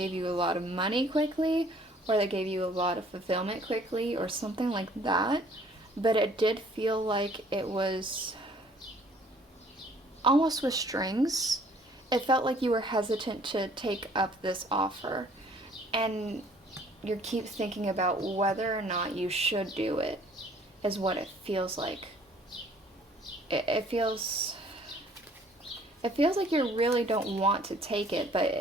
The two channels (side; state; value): both; normal; correlation 0.57